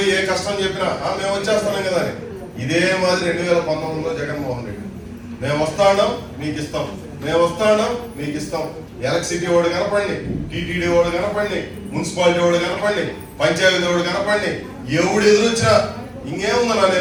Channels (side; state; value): both; identical; correlation 1.00